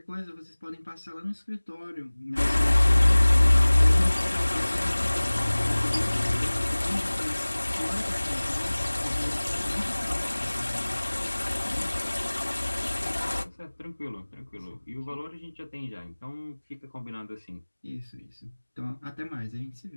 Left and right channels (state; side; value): inverted; both; correlation -1.00